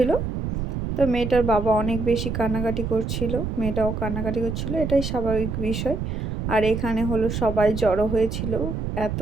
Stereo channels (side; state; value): right; noise; rumble, 3 dB below the sound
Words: তো মেয়েটার বাবা অনেক বেশি কান্নাকাটি করছিল, মেয়েটাও কান্নাকাটি করছিল, এটাই স্বাভাবিক বিষয়। আর এখানে হলো সবাই জড়ো হয়েছিল, এত